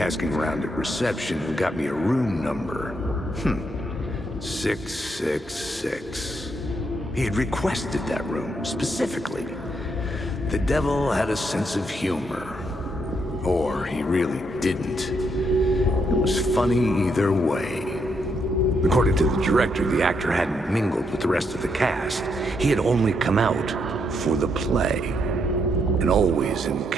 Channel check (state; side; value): normal; both; correlation 0.77